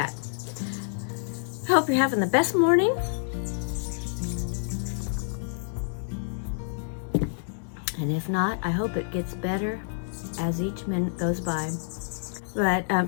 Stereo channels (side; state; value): right; silent; 59 dB below the other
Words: I hope you're having the best morning. And if not, I hope it gets better as each minute goes by. But